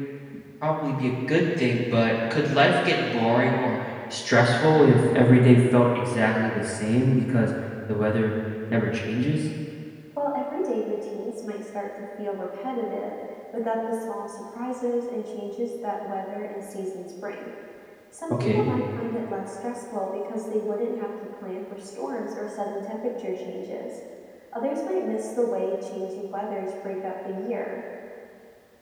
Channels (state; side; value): identical; both; correlation 1.00